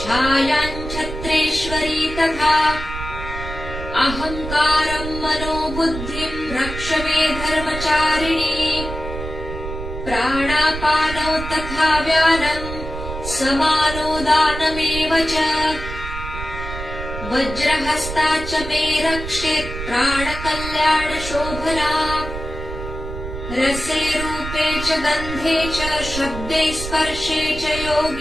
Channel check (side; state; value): right; noise; rumble, 8 dB below the sound